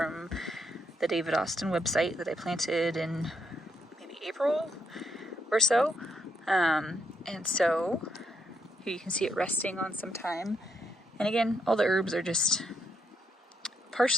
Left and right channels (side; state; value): both; normal; correlation 0.78